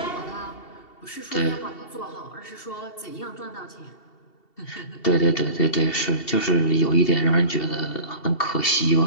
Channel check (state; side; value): late; right; 2.7 ms